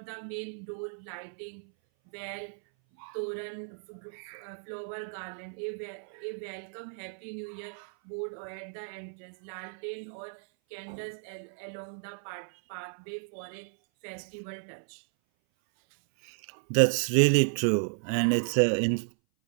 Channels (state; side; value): silent; left; 56 dB below the other